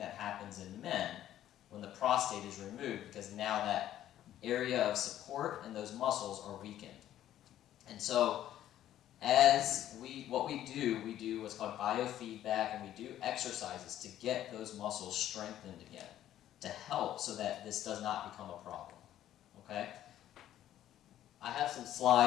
happens in men when the prostate is removed, because now that area of support and those muscles are weakened. And so what we do what's called biofeedback, and we do exercises to get those muscles strengthened again, to help so that this does not become a problem, okay? I have some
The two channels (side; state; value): right; quieter; 12.2 dB